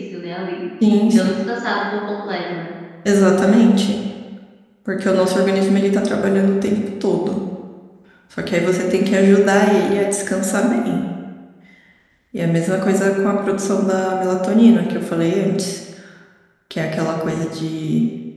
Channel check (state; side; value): identical; both; correlation 1.00